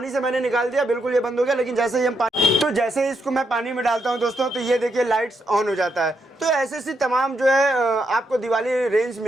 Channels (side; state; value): both; normal; correlation 0.80